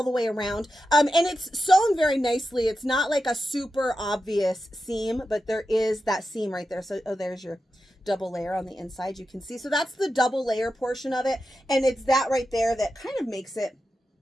the way around, and it's sewn very nicely. It's not like a super obvious seam, but there is that seam right there. So, oh, there's your double layer on the inside, you can see. So that's the double layer portion of it, and it's that right there that kind of makes it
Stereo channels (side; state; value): both; normal; correlation 0.90